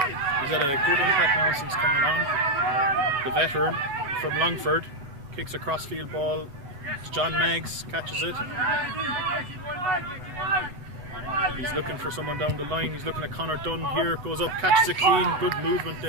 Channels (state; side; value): late; left; 8.0 ms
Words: had a good impact now since coming on. The veteran from Longford kicks a crossfield ball to John Maggs, catches it. He's looking for someone down the line. He's looking at Conor Dunn here. Goes up, catches it clean. Good movement